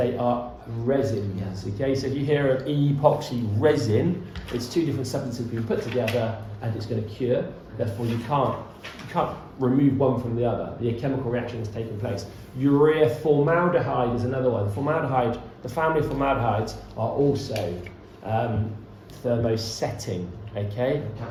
are resins. Yes. Okay, so if you hear an epoxy resin, it's two different substances being put together, and it's going to cure. Therefore, you can't remove one from the other. The chemical reaction is taking place. Urea formaldehyde is another one. Formaldehyde, the family of formaldehydes are also thermosetting. Okay, They're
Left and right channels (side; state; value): both; identical; correlation 1.00